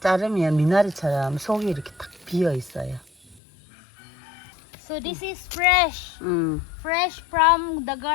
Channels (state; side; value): drops out; right; at 3.4 s